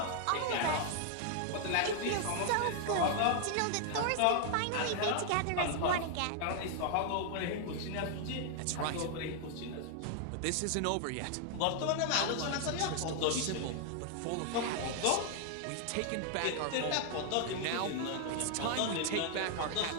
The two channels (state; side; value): different; both; correlation 0.00